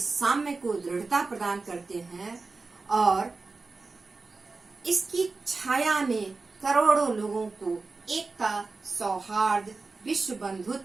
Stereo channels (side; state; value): left; quieter; 3.9 dB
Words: को दृढ़ता प्रदान करते हैं, और इसकी छाया में करोड़ों लोगों को एकता, सौहार्द, विश्व